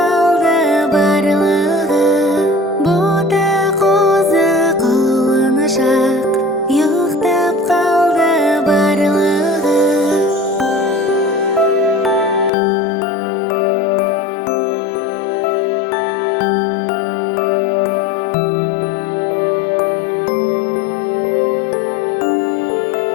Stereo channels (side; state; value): right; drops out; at 12.5 s